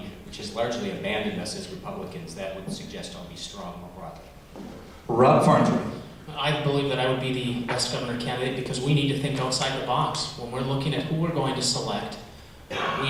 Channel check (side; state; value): both; identical; correlation 1.00